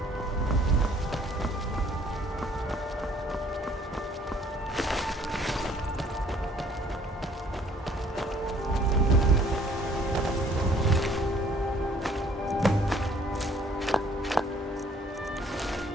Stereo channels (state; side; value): normal; both; correlation 0.59